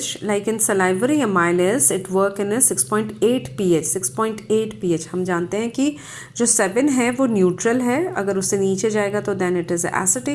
like in salivary amylase it work in a 6.8 pH. 6.8 pH हम जानते हैं कि जो 7 है वो neutral है, अगर उससे नीचे जाएगा तो देन इट इज़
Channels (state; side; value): identical; both; correlation 1.00